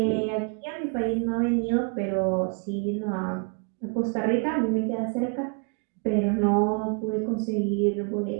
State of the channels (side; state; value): left; quieter; 36.8 dB